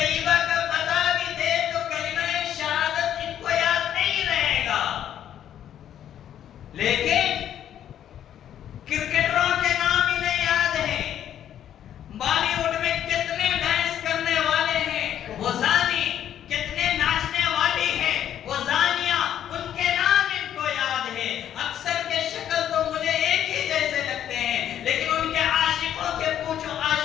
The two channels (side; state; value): right; quieter; 10.4 dB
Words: کا پتہ بھی دے تو کلمہ شہادت ان کو یاد نہیں رہے گا، لیکن کرکٹروں کے نام انہیں یاد ہیں، بالی ووڈ میں کتنے ڈانس کرنے والے ہیں وہ زانی، کتنے ناچنے والی ہیں وہ زانیہ، ان کے نام ان کو یاد ہے۔ اکثر کے شکل تو مجھے ایک ہی جیسے لگتے ہیں، لیکن ان کے عاشقوں